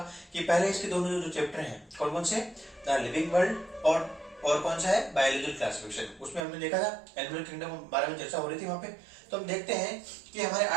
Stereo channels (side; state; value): left; drops out; at 6.5 s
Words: कि पहले इसके दोनों जो चैप्टर हैं कौन कौन से, द लिविंग वर्ल्ड और कौन सा है, बायोलॉजिकल क्लासिफिकेशन। उसमें हमने देखा था एनिमल किंगडम बारे में चर्चा हो रही थी वहां पे। तो हम देखते हैं कि हमारे